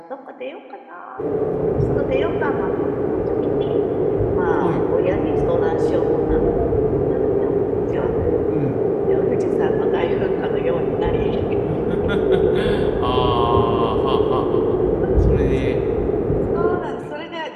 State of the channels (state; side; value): identical; both; correlation 1.00